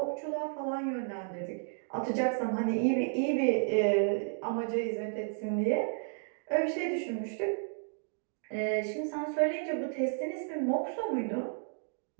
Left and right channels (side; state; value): left; silent; digital silence